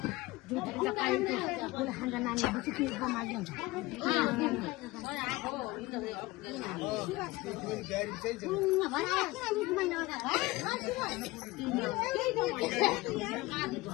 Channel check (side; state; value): right; quieter; 20.4 dB